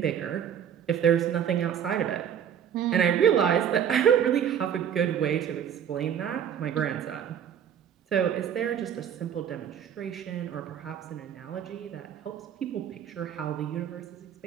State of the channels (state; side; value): quieter; left; 9.0 dB